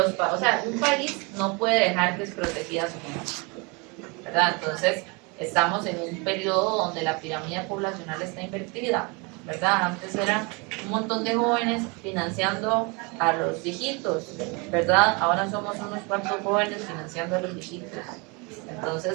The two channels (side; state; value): left; quieter; 29.8 dB